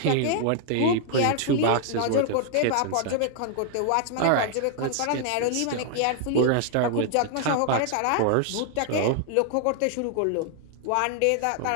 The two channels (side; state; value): both; different; correlation 0.00